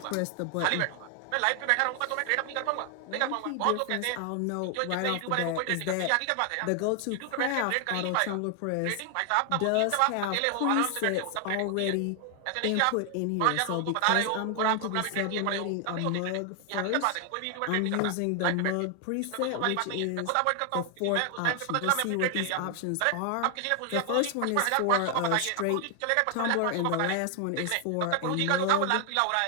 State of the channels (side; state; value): both; different; correlation 0.00